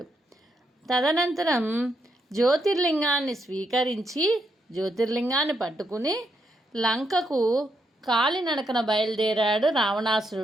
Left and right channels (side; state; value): both; normal; correlation 0.79